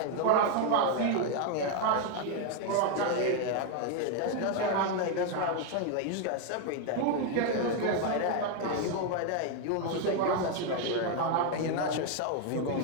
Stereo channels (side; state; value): both; different; correlation 0.01